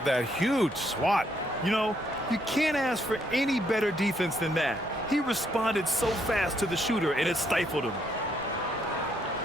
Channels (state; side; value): normal; both; correlation 0.72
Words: that huge swat. You know, you can't ask for any better defense than that. He responded so fast to the shooter, and it stifled him.